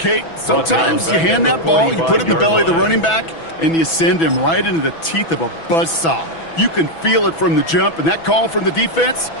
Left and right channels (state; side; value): late; right; 6.1 ms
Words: sometimes you hand that ball, you put it in the belly of the running back, and you send him right into the teeth of a buzzsaw. You can feel it from the jump, and that call from the defense,